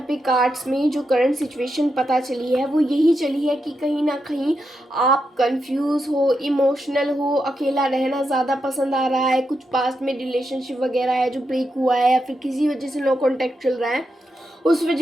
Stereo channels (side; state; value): both; normal; correlation 0.85